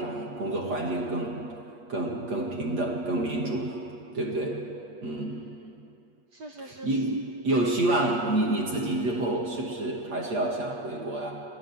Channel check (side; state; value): left; late; 8.4 ms